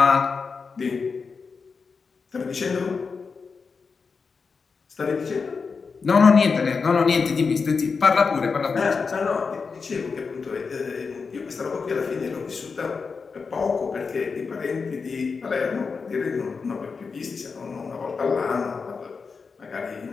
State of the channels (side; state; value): right; quieter; 5.0 dB